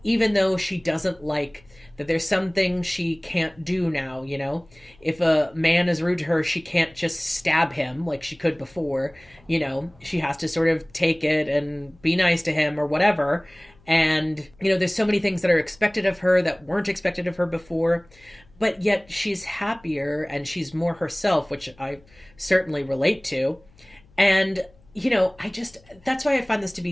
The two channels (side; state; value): left; noise; hum, 28 dB below the sound